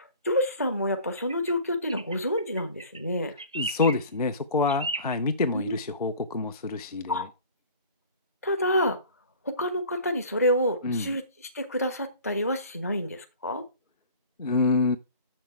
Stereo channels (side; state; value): both; inverted; correlation -0.44